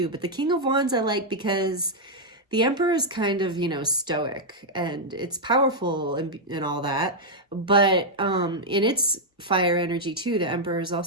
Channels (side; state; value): both; normal; correlation -0.03